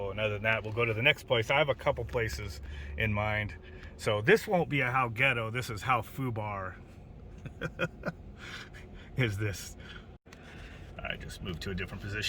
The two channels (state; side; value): identical; both; correlation 1.00